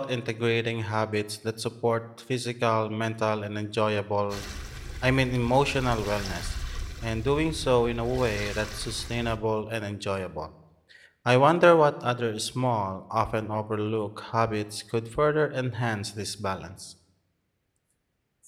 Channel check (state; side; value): identical; both; correlation 1.00